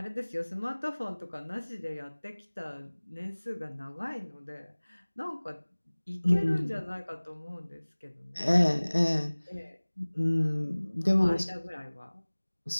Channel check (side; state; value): both; inverted; correlation -1.00